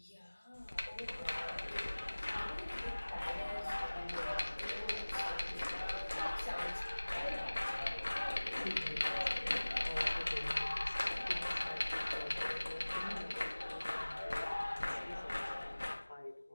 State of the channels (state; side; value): inverted; both; correlation -1.00